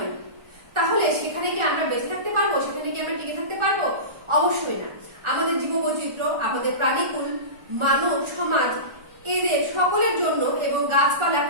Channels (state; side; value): late; left; 1.4 ms